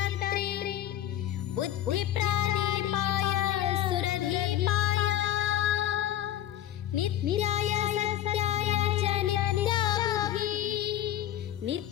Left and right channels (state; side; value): quieter; right; 12.4 dB